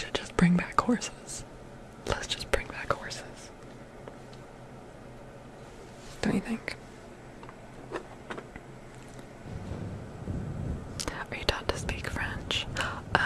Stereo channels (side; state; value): both; identical; correlation 1.00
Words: just bring back horses. Let's just bring back horses. Don't you think? Are you taught to speak French?